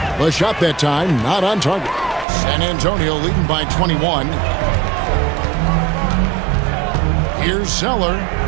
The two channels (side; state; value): left; drops out; at 2.2 s